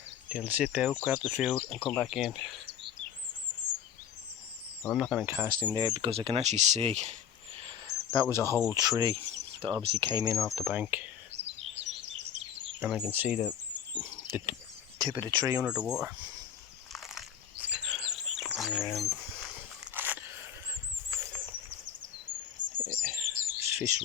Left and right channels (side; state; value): right; quieter; 8.9 dB